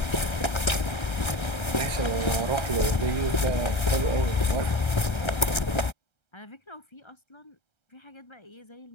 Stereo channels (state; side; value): late; right; 1.3 ms